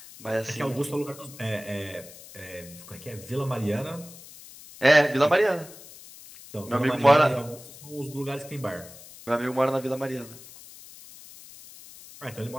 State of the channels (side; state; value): left; noise; hiss, 18 dB below the sound